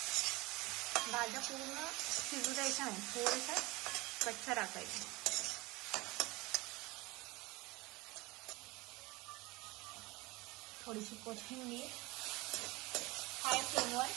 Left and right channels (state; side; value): quieter; left; 22.6 dB